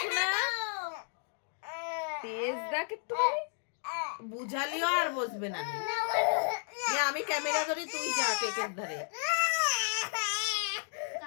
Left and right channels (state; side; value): silent; right; 56 dB below the other